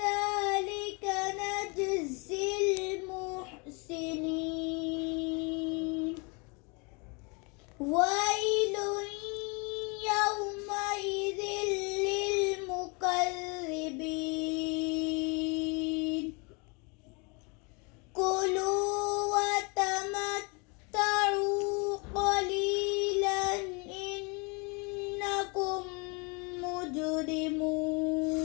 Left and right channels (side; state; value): right; quieter; 31.1 dB